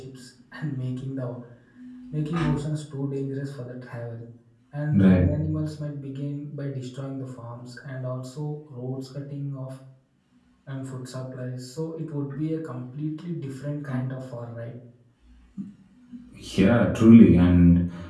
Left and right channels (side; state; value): both; identical; correlation 1.00